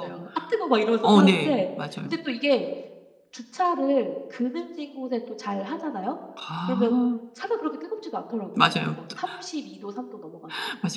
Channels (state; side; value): identical; both; correlation 1.00